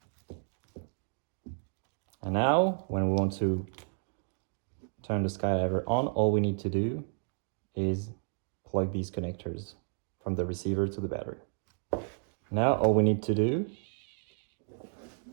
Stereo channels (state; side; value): silent; left; 56 dB below the other